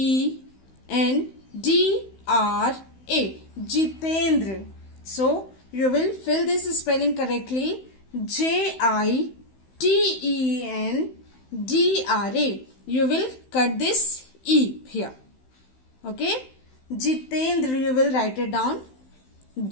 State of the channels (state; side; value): late; right; 16 ms